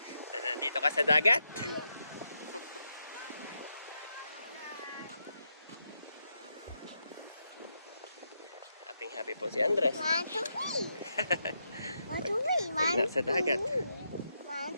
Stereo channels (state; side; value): inverted; both; correlation -0.82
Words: Na nandito ka sa dagat? Happy po si Andres. Pag nasa dagat.